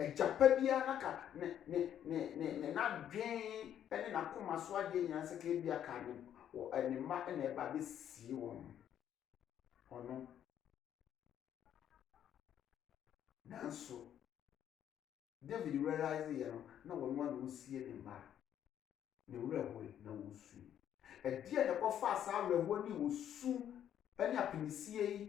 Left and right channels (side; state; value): right; quieter; 10.1 dB